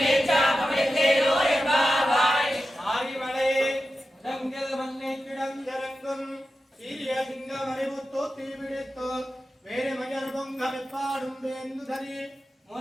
என்பாவாய் ஆரிமலை இடங்கள் மண்ணை கிடந்திறங்கும் சீரிய சிங்கம் அறிவுத்தோ தீவிடித்தோ வேறு மயர் பொங்க வெப்பாடும் வேந்து தரி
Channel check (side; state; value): both; normal; correlation 0.92